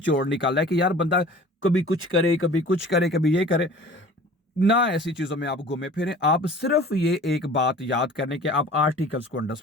निकाला है कि यार बंदा कभी कुछ करे, कभी कुछ करे, कभी ये करे ना, ऐसी चीजों में आप घूमे फिरें। आप सिर्फ ये एक बात याद करने के आप आर्टिकल्स को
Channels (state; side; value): normal; both; correlation 0.45